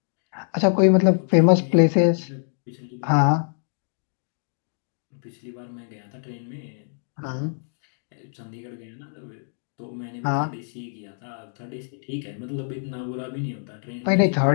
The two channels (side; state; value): right; silent; digital silence